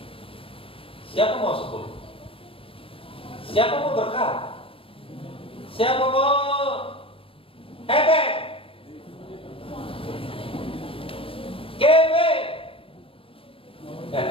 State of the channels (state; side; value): late; right; 0.27 ms